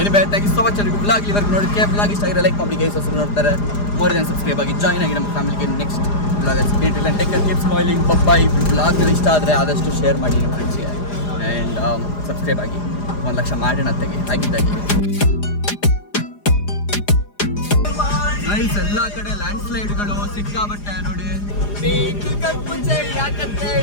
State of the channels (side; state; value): right; late; 4.9 ms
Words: thank you so much. Blog ಇವಾಗ ನೋಡೋಕ್ಕೆ ಬ್ಲಾಗ್ ಇಷ್ಟ ಆಗಿರೋ ಲೈಕ್ ಮಾಡಿ, ಗೈಸ್ ಹೊಸ ನೋಡ್ತಾರೆ ಮೋರ್ ದೆನ್ ಸಬ್ಸ್ಕ್ರೈಬ್ ಆಗಿ ಜಾಯ್ನ್ ಆಗಿ ನಮ್ಮ ಫ್ಯಾಮಿಲಿಗೆ. Next blog take care, keep smiling. By. Blog ಇಷ್ಟ ಆದರೆ ಆದಷ್ಟು ಶೇರ್ ಮಾಡಿ ನಿಮ್ಮ ಫ್ರೆಂಡ್ಸ್ಗೆ. ಆ್ಯಂಡ್ ಸಬ್ಸ್ಕ್ರೈಬ್ ಆಗಿ 1,00,000 ಮಾಡೋಣ ಆಗಿದ್ದಾಗಿ. ಗೈಸ್ ಎಲ್ಲ ಕಡೆ ಲ್ಯಾಂಡ್ ಸ್ಲೈಡ್ಗಳು ಸಿಕ್ಕಾಬಟ್ಟೆ ನೋಡಿ.